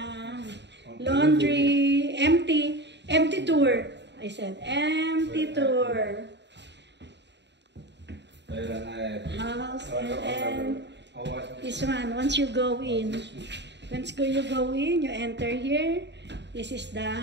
Laundry, empty tour. I said empty tour. House and this one. Once you go in, you enter here. This is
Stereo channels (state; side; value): late; left; 0.51 ms